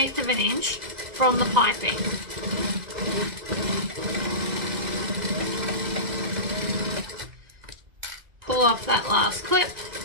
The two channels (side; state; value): left; late; 1.9 ms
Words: of an inch from the piping. Pull off that last clip.